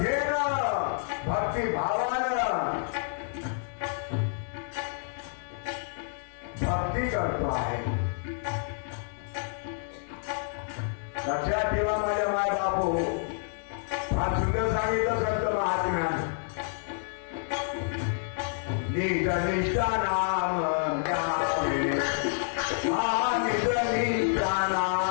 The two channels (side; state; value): right; silent; 59 dB below the other